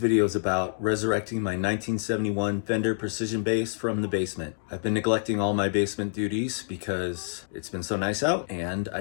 is about resurrecting my 1971 Fender Precision Bass from the basement. I've been neglecting all my basement duties because it's been so nice out, and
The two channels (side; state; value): right; silent; digital silence